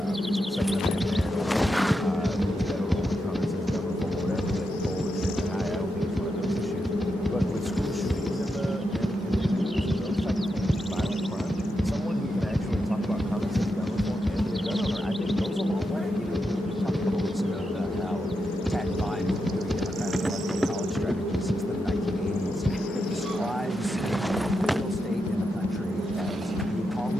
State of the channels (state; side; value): normal; both; correlation 0.86